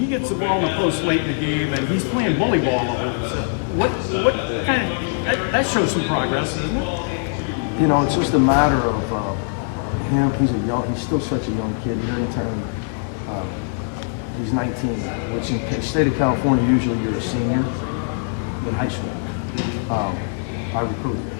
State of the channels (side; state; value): right; silent; 64 dB below the other